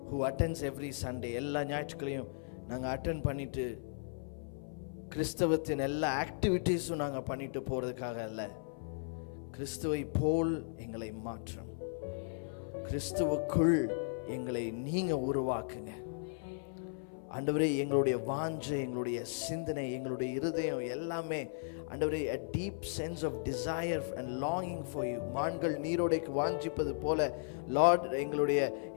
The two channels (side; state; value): right; silent; 54 dB below the other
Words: who attends every Sunday. எல்லா ஞாயிற்றுக்கிழையும் நாங்கள் அட்டென்ட் பண்ணிட்டு கிறிஸ்தவத்தின் எல்லா ஆக்டிவிட்டீஸும் நாங்கள் பண்ணிட்டு போகிறதுக்காக அல்ல. கிறிஸ்துவை போல் எங்களை மாற்றும். கிறிஸ்துவுக்குள் எங்களை நீங்கள் உருவாக்குங்க ஆண்டவரே. எங்களுடைய வாஞ்சை, எங்களுடைய சிந்தனை, எங்களுடைய இருதயம் எல்லாமே ஆண்டவரே a deep sense of desire and longing for you. மான்கள் நீரோடைக்கு வாஞ்சிப்பது போல லார்ட்